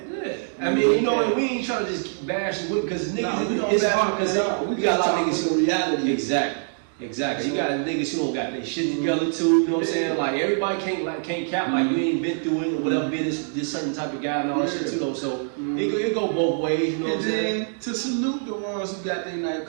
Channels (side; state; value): left; silent; digital silence